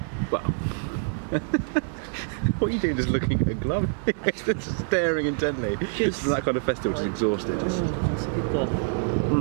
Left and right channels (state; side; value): silent; left; digital silence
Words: well, what are you doing? Just looking at a glove, just staring intently. Just that kind of festival, just exhausted. Oh, it's a good